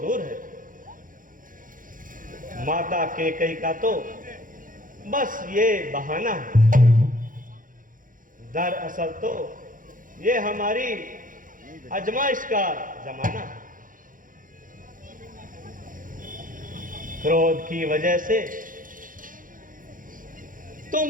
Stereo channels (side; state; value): left; late; 0.39 ms